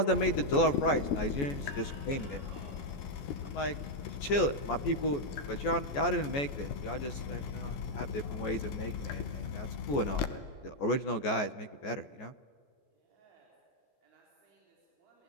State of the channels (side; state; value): right; late; 14 ms